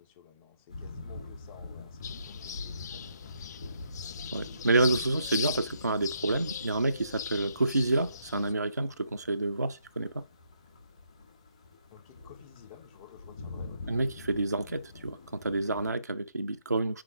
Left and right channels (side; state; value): both; inverted; correlation -0.75